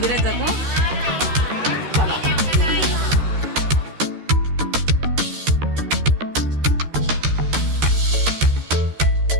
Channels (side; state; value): left; late; 13 ms